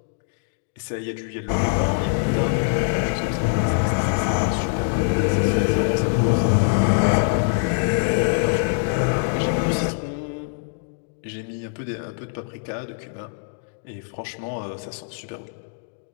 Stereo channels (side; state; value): right; silent; digital silence